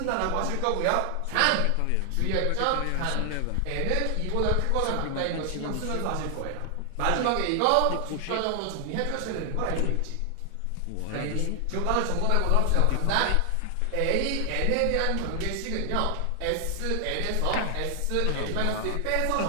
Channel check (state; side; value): different; both; correlation 0.00